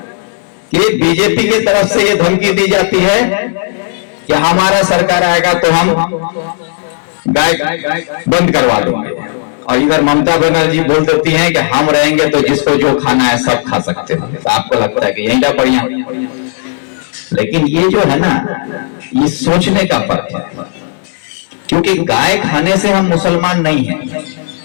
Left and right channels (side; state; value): right; silent; digital silence